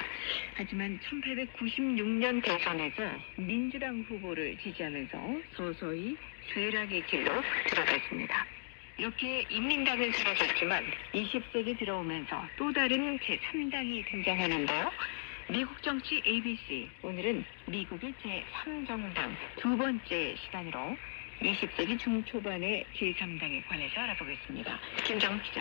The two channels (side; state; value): right; silent; digital silence